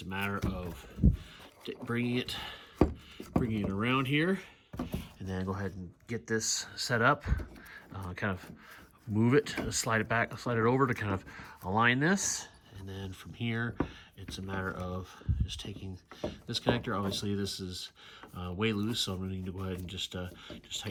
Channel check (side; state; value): both; identical; correlation 1.00